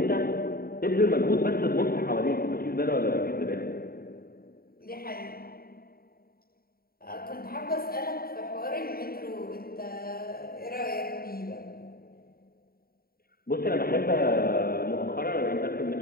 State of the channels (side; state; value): right; late; 0.43 ms